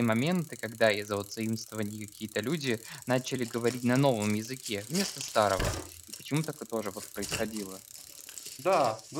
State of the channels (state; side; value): identical; both; correlation 1.00